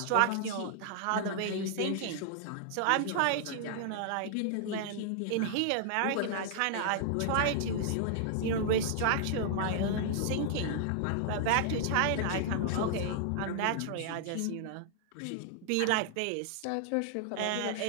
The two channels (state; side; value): different; both; correlation -0.01